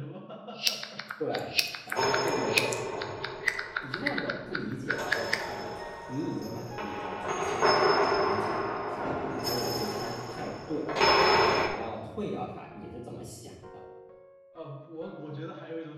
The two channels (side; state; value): both; identical; correlation 1.00